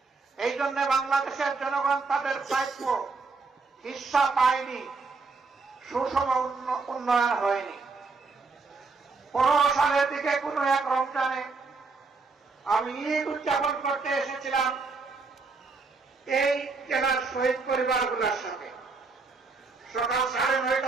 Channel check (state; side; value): quieter; left; 4.2 dB